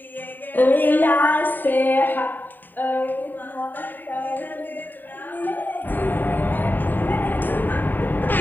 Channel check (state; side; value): late; right; 0.091 ms